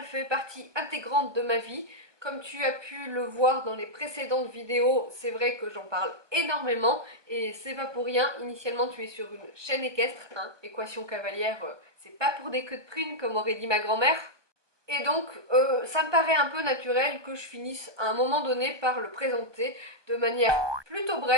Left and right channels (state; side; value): late; left; 1.2 ms